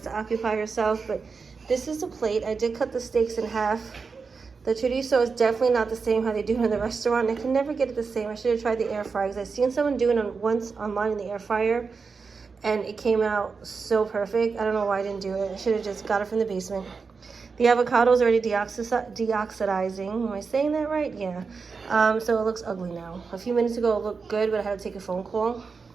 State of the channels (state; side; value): quieter; left; 5.0 dB